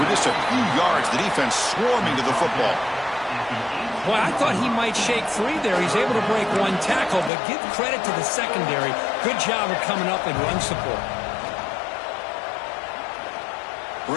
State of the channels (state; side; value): drops out; right; at 7.3 s